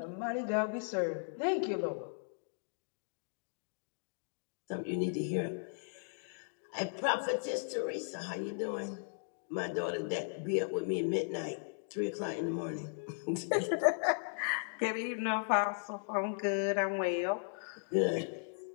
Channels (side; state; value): right; silent; digital silence